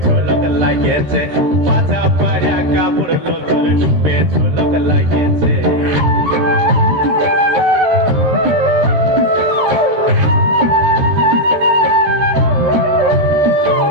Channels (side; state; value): left; late; 13 ms